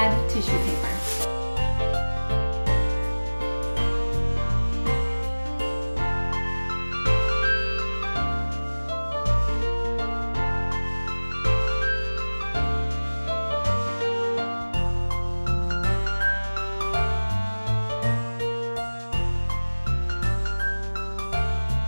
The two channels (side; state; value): both; inverted; correlation -1.00